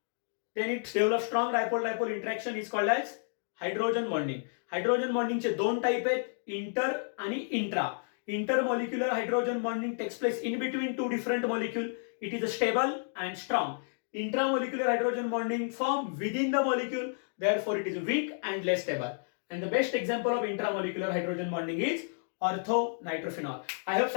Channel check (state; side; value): silent; right; digital silence